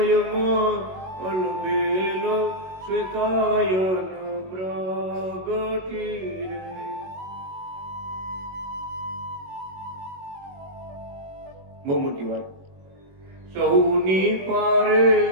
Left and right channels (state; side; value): late; left; 21 ms